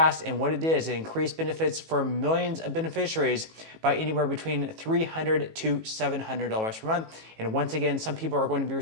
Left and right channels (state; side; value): late; left; 18 ms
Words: and what it did is it increased benefits for millions of beneficiaries by anywhere between $300 to $700 per month. And once again, some people are going to be